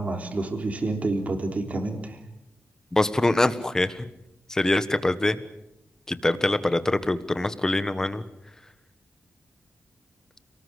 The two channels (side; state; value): both; normal; correlation 0.94